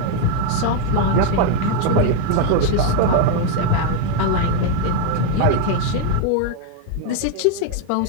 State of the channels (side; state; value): both; different; correlation 0.01